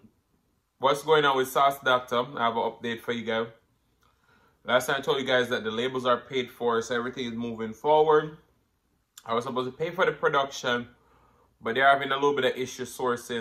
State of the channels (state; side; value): identical; both; correlation 1.00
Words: what's going on with Sauce Dackta. I have an update for you guys. Last time I told you guys that the labels are paid for, so everything is moving forward. I was supposed to pay for the production, but they're having a little bit of issue